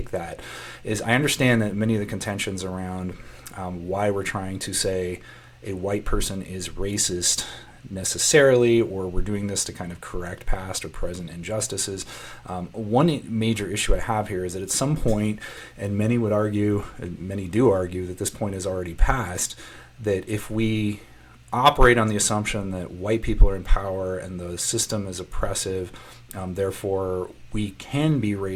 that is I understand that many of the contentions around why we're trying to say a white person is racist necessarily, or we're doing this to kind of correct past or present injustices. One major issue I have here is that at some point, and many would argue, and many do argue, that this point is already past, that if we operate on the assumption that white people are in power and the system is oppressive, therefore we can be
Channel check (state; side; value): identical; both; correlation 1.00